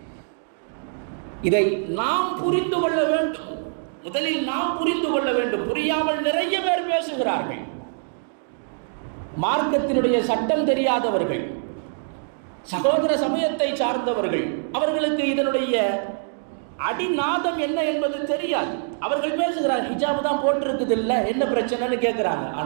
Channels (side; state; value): left; silent; digital silence